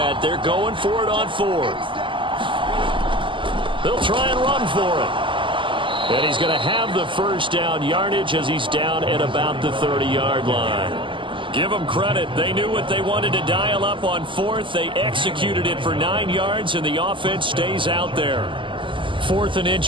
They're going for it on 4th. They'll try and run for it. And he's going to have the first down yardage as he's down at about the 30-yard line. Give them credit. They knew what they wanted to dial up on 4th. They executed it for 9 yards, and the offense stays out there. 4th and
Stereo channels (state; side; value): late; left; 0.25 ms